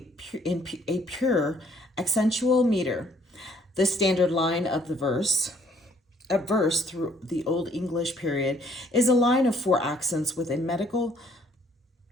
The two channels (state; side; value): normal; both; correlation 0.63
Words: a pure accentual meter. The standard line of the verse through the Old English period is a line of 4 accents with a